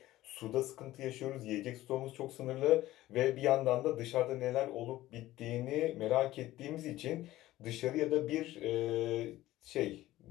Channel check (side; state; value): right; quieter; 15.9 dB